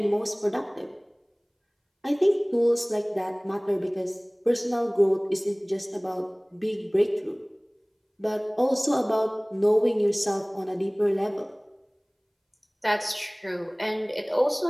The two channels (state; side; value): identical; both; correlation 1.00